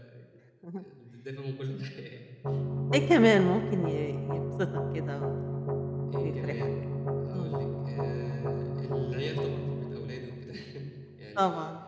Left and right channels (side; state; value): both; identical; correlation 1.00